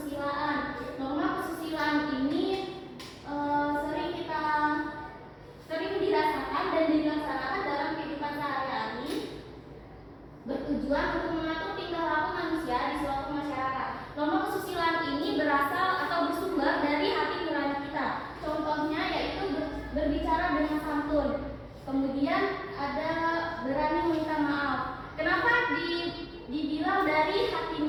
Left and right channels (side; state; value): both; identical; correlation 1.00